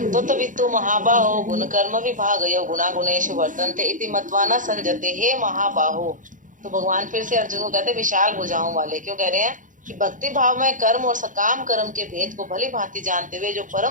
तो तत्वितु महाबाहो गुण कर्म विभागयो गुणा गुणेषु वर्तन्ते इति मत्वा न संजते। हे महाबाहो, तो भगवान फिर से अर्जुन को कहते हैं विशाल भुजाओं वाले। क्यों कह रहे हैं? कि भक्ति भाव में कर्म और सकाम कर्म के भेद को भली भांति जानते हुए जो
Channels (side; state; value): left; late; 0.38 ms